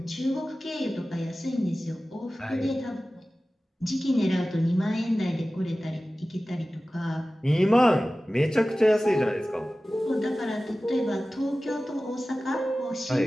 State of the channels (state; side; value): normal; both; correlation 0.96